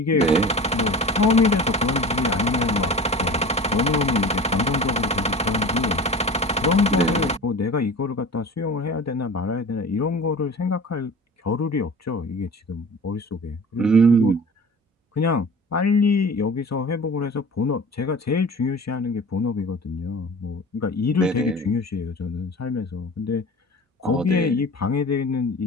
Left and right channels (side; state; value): both; normal; correlation 0.38